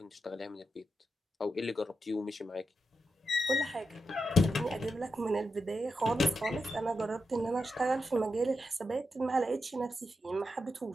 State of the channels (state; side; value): normal; both; correlation 0.87